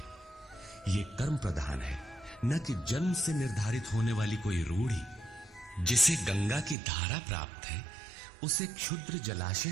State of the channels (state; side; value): drops out; left; at 6.8 s